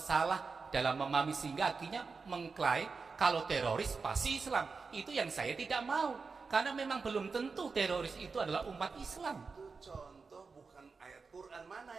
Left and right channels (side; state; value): left; quieter; 4.7 dB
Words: dalam memahami sehingga akhirnya mengklaim kalau teroris pasti Islam. Itu yang saya tidak mau, karena memang belum tentu teroris itu adalah umat Islam. Itu contoh bukan ayat Quran. Mana